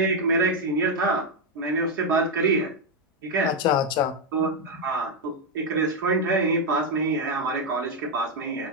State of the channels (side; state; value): both; normal; correlation 0.03